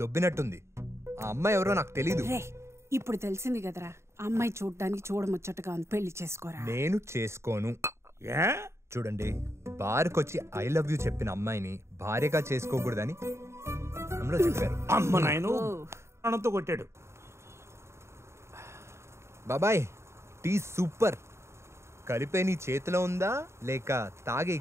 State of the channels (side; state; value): left; late; 0.13 ms